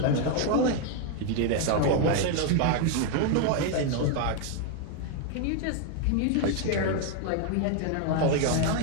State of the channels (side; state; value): both; different; correlation 0.01